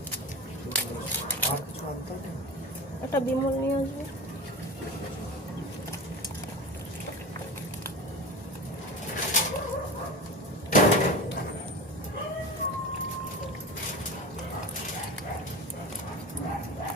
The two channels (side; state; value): both; normal; correlation 0.28